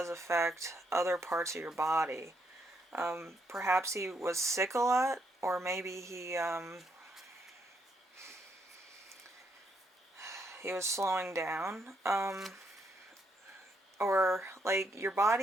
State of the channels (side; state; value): both; normal; correlation 0.75